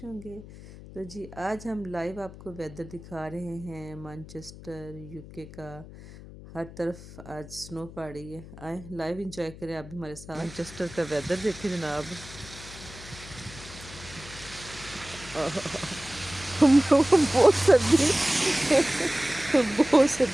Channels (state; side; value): noise; left; hum, 16 dB below the sound